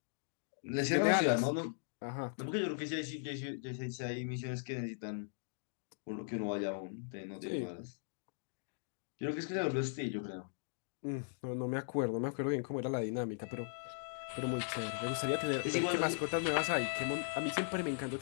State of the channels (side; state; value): right; silent; digital silence